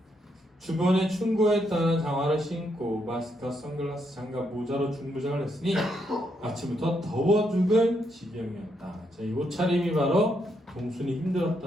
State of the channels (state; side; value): normal; both; correlation 0.78